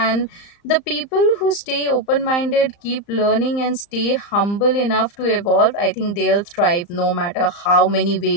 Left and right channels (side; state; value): right; late; 35 ms